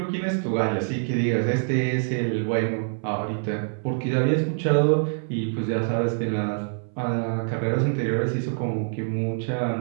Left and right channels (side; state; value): left; silent; 60 dB below the other